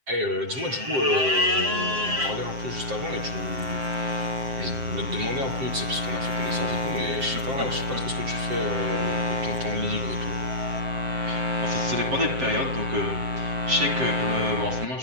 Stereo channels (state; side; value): late; left; 7.6 ms